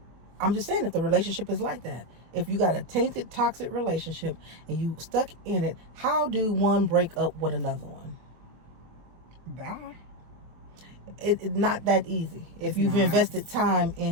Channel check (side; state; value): left; late; 24 ms